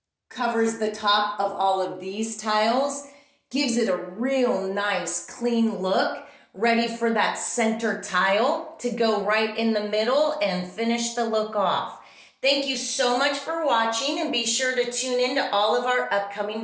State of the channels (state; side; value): identical; both; correlation 1.00